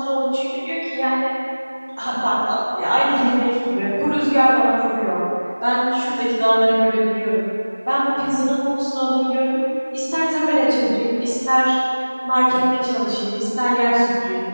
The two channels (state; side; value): inverted; both; correlation -1.00